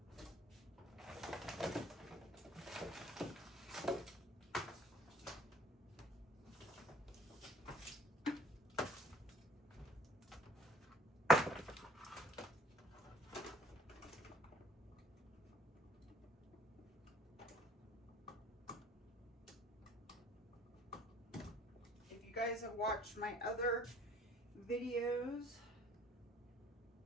Guys have watched my other videos,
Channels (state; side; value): normal; both; correlation 0.55